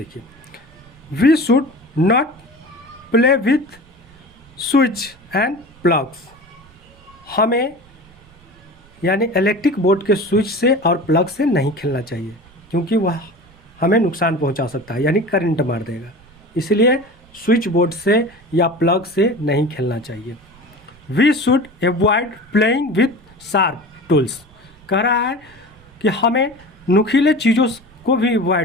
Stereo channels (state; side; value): noise; right; rumble, 27 dB below the sound